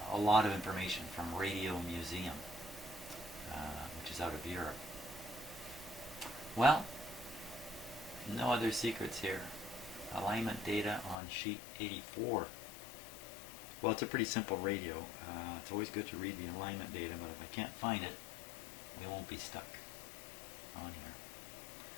a lot of information from Radio Museum, which is out of Europe. Well, no other secrets here. Alignment data on sheet 84. Well, it's a pretty simple radio. It's always good to read the alignment data, but if I can't find it, we won't be stuck on here.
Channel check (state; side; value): drops out; right; at 11.2 s